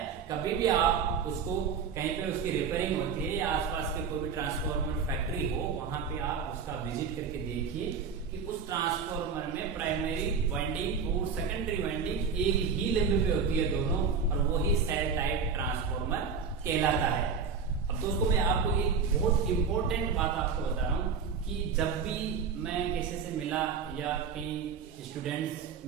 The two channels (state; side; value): quieter; left; 5.8 dB